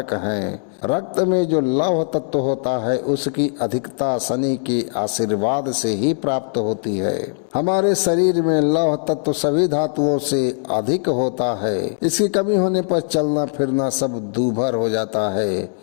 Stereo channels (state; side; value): silent; right; digital silence